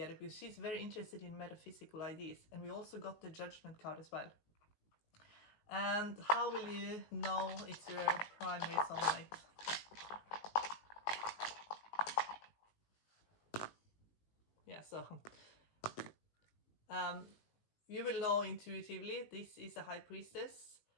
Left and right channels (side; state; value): right; late; 19 ms